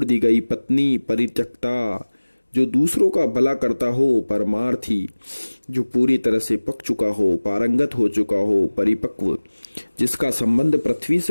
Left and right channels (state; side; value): inverted; both; correlation -1.00